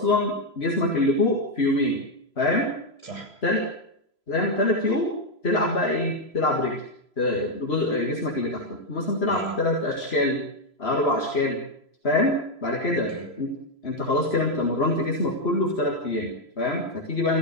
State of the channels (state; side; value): late; right; 3.0 ms